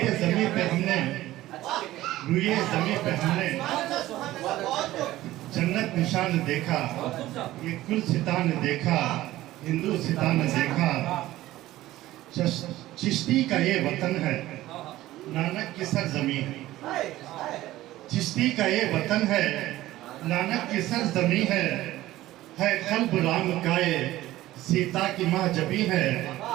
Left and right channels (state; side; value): quieter; left; 15.8 dB